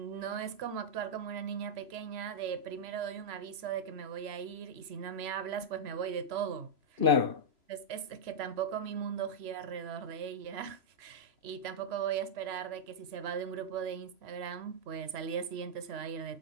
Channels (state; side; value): late; left; 3.0 ms